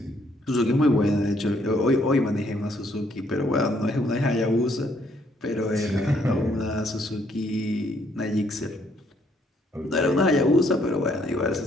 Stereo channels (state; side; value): normal; both; correlation 0.68